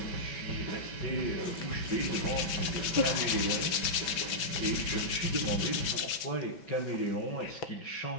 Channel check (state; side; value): late; right; 6.0 ms